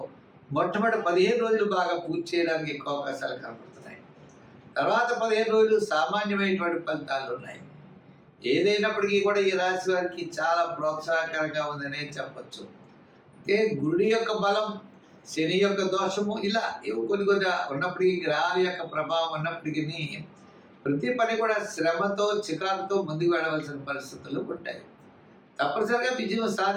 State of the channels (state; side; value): identical; both; correlation 1.00